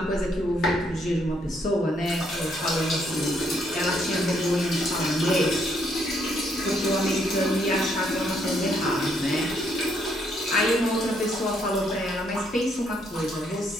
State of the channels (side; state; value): both; normal; correlation 0.72